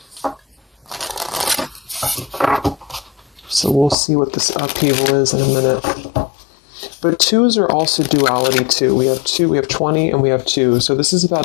So we'll see what this upheaval is in a minute. But twos are also duality too. We have 2, we have 20, and we have 2. So this is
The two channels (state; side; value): drops out; right; at 4.0 s